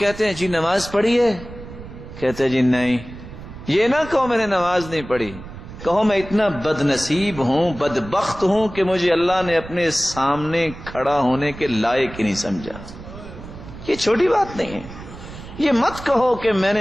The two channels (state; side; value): noise; right; rumble, 14 dB below the sound